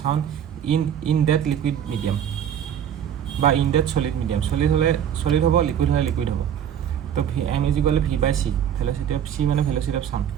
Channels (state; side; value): quieter; left; 9.3 dB